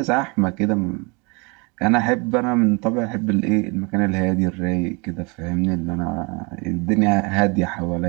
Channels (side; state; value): left; quieter; 29.5 dB